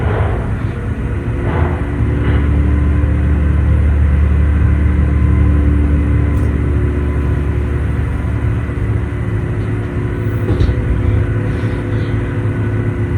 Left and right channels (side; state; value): both; identical; correlation 1.00